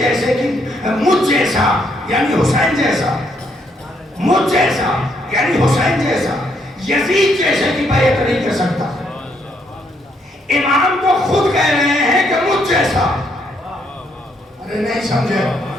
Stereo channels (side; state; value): both; normal; correlation 0.73